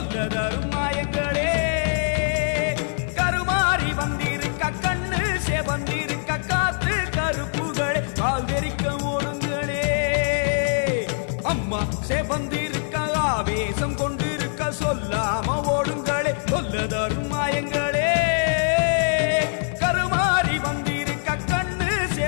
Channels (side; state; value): right; silent; digital silence